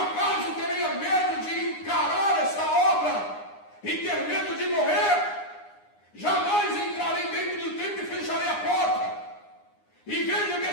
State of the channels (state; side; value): late; right; 9.7 ms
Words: teria medo de encarar essa obra e ter medo de morrer? Jamais entrarei dentro do templo e fecharei a porta. E veja que